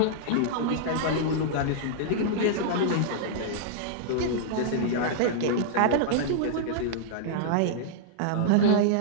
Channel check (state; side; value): different; both; correlation -0.02